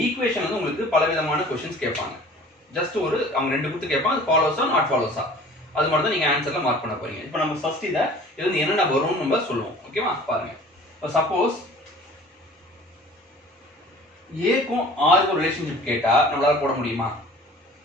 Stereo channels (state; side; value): normal; both; correlation 0.46